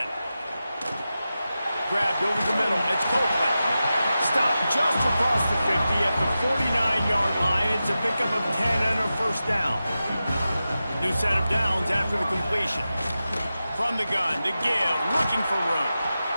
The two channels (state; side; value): inverted; both; correlation -0.93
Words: Grabbed over the middle. It's Copeland. Stopped just across the 50 at the 49-yard line. It's a pickup of 10 and a first down. New set of downs after the completion. From the gun, the give, looking for room.